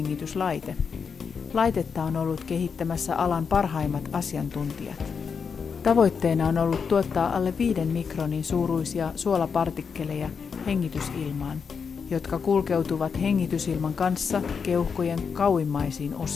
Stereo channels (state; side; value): quieter; right; 6.0 dB